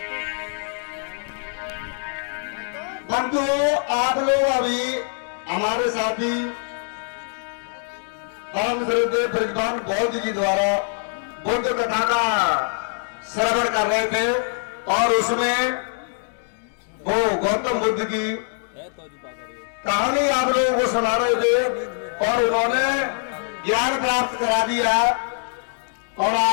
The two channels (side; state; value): right; silent; digital silence